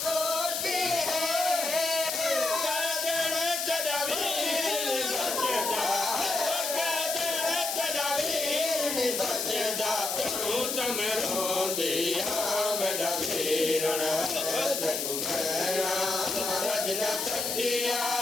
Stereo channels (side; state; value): left; noise; hiss, 2 dB below the sound